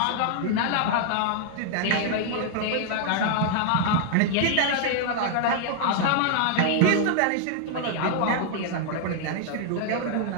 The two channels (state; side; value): different; both; correlation -0.01